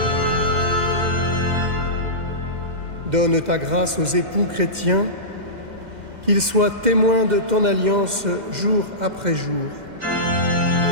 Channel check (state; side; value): late; left; 2.0 ms